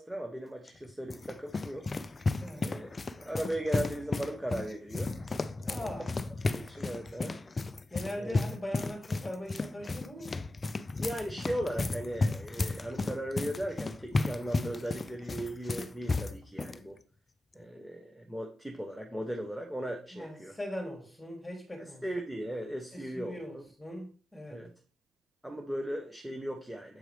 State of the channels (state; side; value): normal; both; correlation 0.94